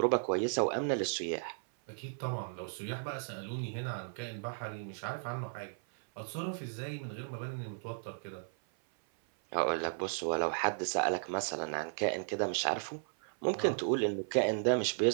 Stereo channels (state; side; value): silent; left; 54 dB below the other